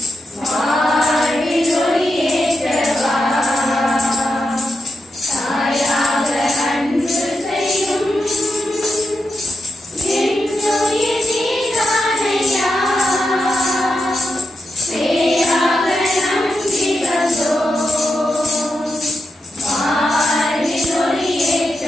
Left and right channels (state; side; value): normal; both; correlation 0.86